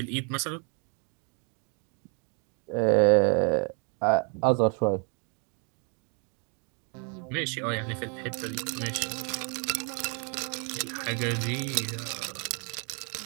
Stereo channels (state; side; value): quieter; left; 37.5 dB